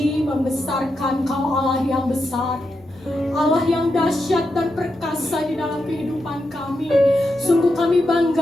membesarkan Kau Allah yang besar, Allah yang dahsyat dan perkasa di dalam kehidupan kami. Sungguh kami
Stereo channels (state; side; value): noise; left; hum, 29 dB below the sound